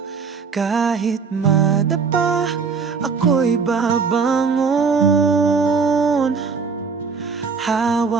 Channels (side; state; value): left; quieter; 5.2 dB